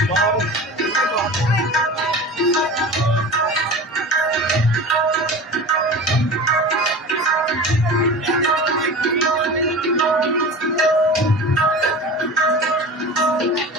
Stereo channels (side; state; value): both; normal; correlation 0.34